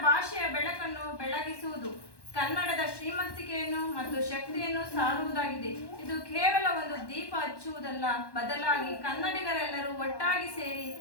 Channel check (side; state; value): right; late; 1.1 ms